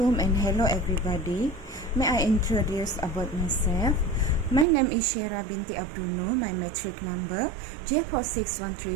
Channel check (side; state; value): left; drops out; at 4.7 s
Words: and hello everybody. May I introduce about myself? My name is Shera binti Abdunu. My metric number